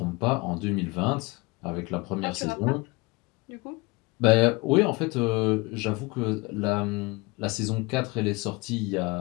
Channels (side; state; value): right; quieter; 25.3 dB